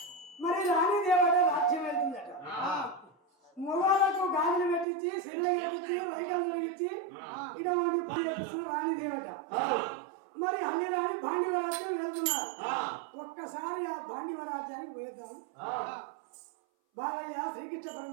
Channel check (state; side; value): drops out; left; at 4.9 s